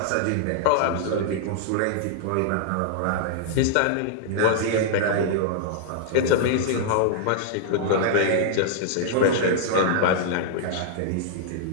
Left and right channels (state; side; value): different; both; correlation -0.01